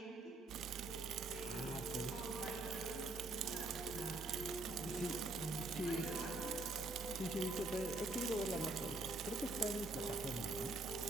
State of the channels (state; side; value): quieter; left; 3.0 dB